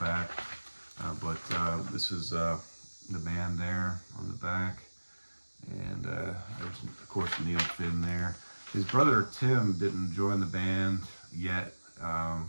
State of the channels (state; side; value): inverted; both; correlation -1.00